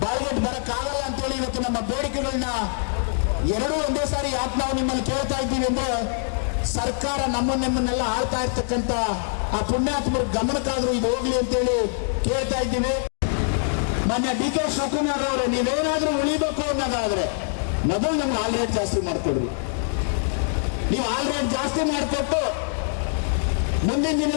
ಬಾಯಿಗೆಟ್ ಬರಕ್ಕಾಗಲ್ಲ ಅಂತೇಳಿ ಇವತ್ತು ನಮ್ಮ ಬೇಡಿಕೆಗಳನ್ನ ಎರಡೂ ಒಂದೇ ಸಾರಿ ಯಾಕೆ ನಾವು ನಿಮ್ಮಲ್ಲಿ ಕೇಳ್ತಾ ಇದ್ದೀವಿ ಅಂದ್ರೆ, ಸರ್ಕಾರ ನಮ್ಮನ್ನೆಲ್ಲ ಆಳ್ತಾ ಇರ್ತಕ್ಕಂಥ ಆ ಪುಣ್ಯಾತ್ಮರ ಗಮನಕ್ಕಾದ್ರೂ ಇದು ಹೋಗ್ಲಿ ಅಂತೇಳಿ ಕೇಳ್ತಾ ಇದ್ದೀವಿ. ಮಾನ್ಯ ಡಿ.ಕೆ. ಶಿವಕುಮಾರ್ ಅವರೇ, ನೀವೇನಾದ್ರೂ ಉಳಿಬೇಕು ಅನ್ನೋದಾದ್ರೆ ಮೊದಲು ನಮ್ಗೆ ಹಾಲ್ ರೇಟ್ ಜಾಸ್ತಿ ಮಾಡ್ಕೊಡ್ರಿ. ನೀವು ಹಾಲ್ ರೇಟ್ ಜಾಸ್ತಿ ಮಾಡಿಕೊಟ್ಟು ಮುಂದಿನ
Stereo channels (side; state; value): right; silent; digital silence